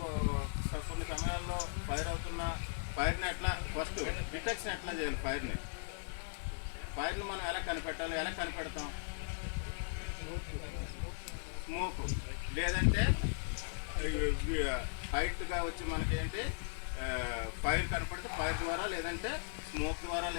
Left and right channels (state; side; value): silent; right; 53 dB below the other